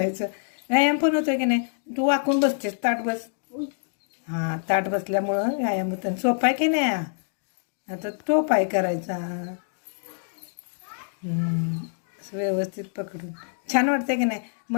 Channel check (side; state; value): right; silent; digital silence